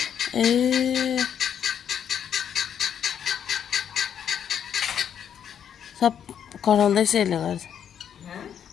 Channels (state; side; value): quieter; right; 8.7 dB